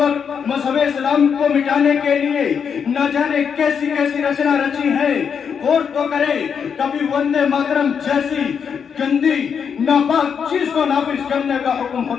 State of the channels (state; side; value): quieter; right; 6.9 dB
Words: मज़हब इस्लाम को मिटाने के लिए न जाने कैसी कैसी रचना रची है। गौर तो करे, कभी वंदे मातरम जैसी गंदी नापाक चीज को नाफिज करने का हुक्म